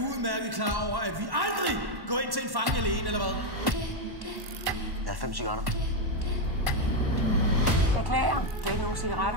klar over, at vi aldrig går ind til en fange alene, eller hvad? Jeg har 5 cigaretter. Beklager. Du har ikke nogen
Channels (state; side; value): late; left; 1.1 ms